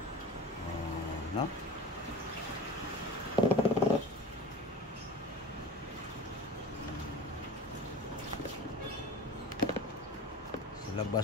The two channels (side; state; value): both; normal; correlation 0.35